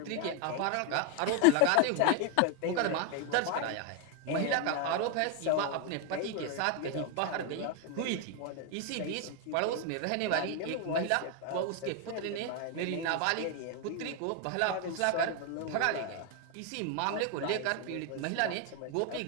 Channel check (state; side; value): different; both; correlation 0.01